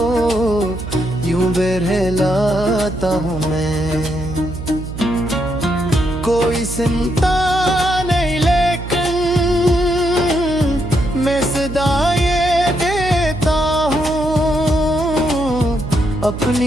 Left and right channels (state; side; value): noise; right; hum, 8 dB below the sound